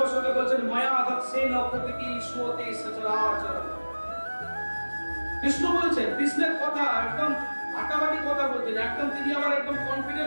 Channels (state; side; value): inverted; both; correlation -1.00